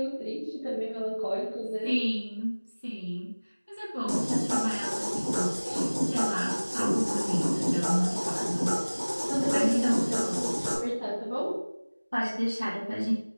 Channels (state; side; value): inverted; both; correlation -1.00